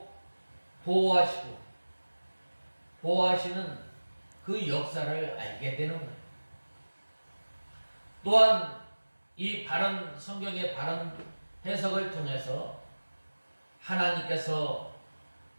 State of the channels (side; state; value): both; inverted; correlation -1.00